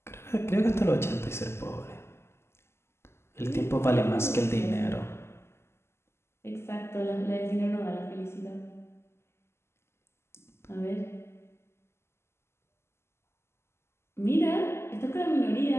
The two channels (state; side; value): late; right; 0.12 ms